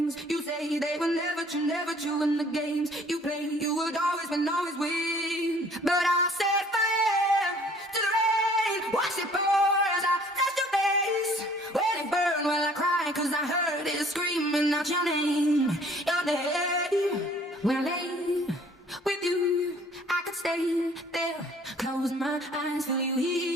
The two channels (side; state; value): both; normal; correlation 0.56